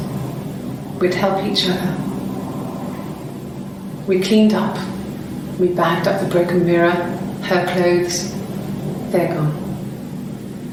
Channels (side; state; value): both; identical; correlation 1.00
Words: We'd help each other. We cleaned up. We bagged up the broken mirror, her clothes. They're gone.